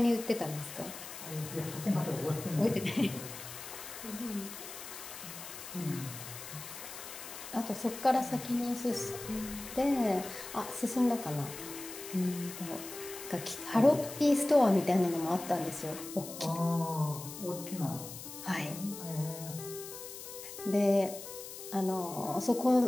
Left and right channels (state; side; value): noise; left; hiss, 11 dB below the sound